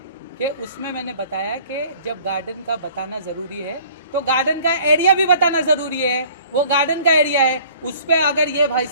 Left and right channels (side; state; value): both; inverted; correlation -0.52